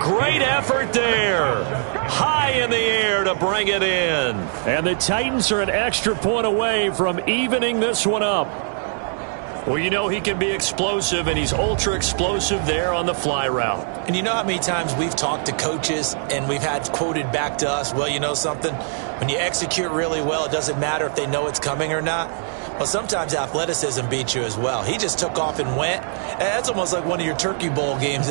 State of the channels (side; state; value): left; silent; digital silence